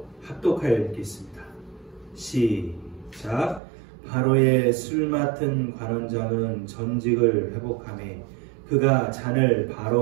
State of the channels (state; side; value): drops out; left; at 3.6 s